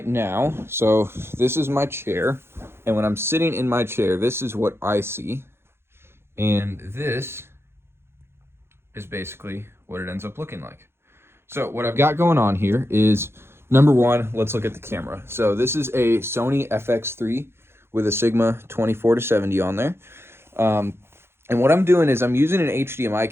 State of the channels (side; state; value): left; late; 0.12 ms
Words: now, so this is my chair. And when I'm sitting in my chair, this is what I see. And this is basically what it ends up looking like. So what I've got going on here is, number one, let's look at the camera. So this is a Sony FX3 with a Sigma 24-70 on there. And what I'm doing is I'm using an HDMI